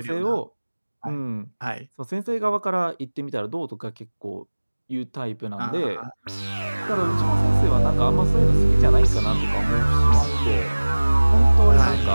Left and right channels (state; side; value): inverted; both; correlation -1.00